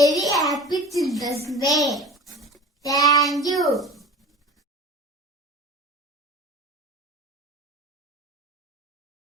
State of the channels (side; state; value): both; normal; correlation 0.36